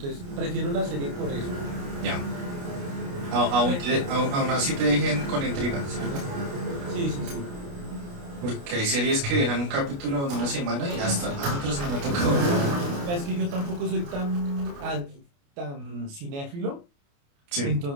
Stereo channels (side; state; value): left; late; 29 ms